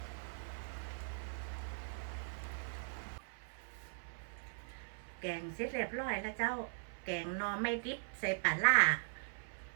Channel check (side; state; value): left; silent; 51 dB below the other